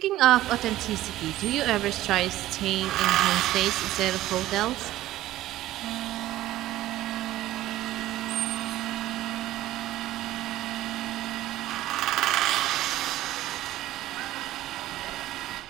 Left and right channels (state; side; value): quieter; left; 15.1 dB